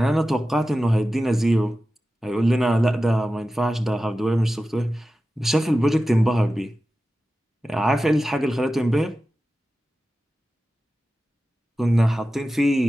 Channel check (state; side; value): normal; both; correlation 0.94